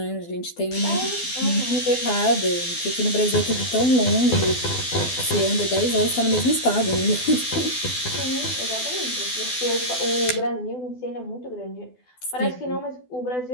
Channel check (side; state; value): right; late; 12 ms